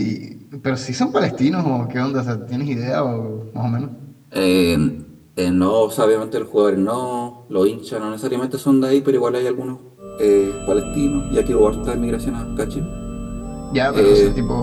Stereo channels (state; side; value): identical; both; correlation 1.00